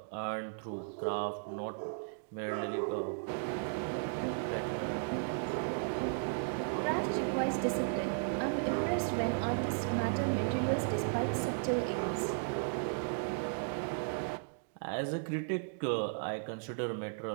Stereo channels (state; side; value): silent; left; digital silence